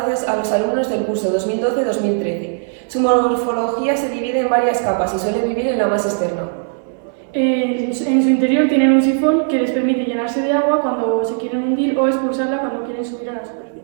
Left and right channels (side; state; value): left; silent; 66 dB below the other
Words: a los alumnos del curso 2012-2013. Su morfología se divide en varias capas y suele vivir en la más externa. En su interior tienen un sifón que les permite llenarse de agua cuando se quieren hundir o expulsarla cuando quieren subir a la